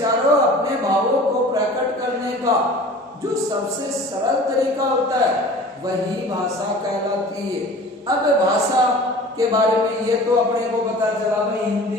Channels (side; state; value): both; normal; correlation 0.42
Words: अपने भावों को प्रकट करने का जो सबसे सरल तरीका होता है वही भाषा कहलाती है। अब भाषा के बारे में ये तो अपने को पता चला भाई